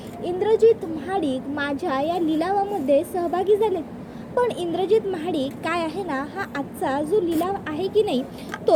इंद्रजित महाडिक माझ्या या लिलावामध्ये सहभागी झाले. पण इंद्रजित महाडिक काय आहे ना, हा आजचा जो लिलाव आहे की नाही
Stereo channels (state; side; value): identical; both; correlation 1.00